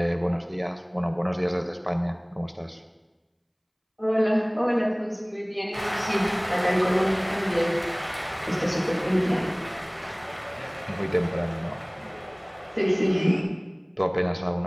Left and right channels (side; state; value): both; identical; correlation 1.00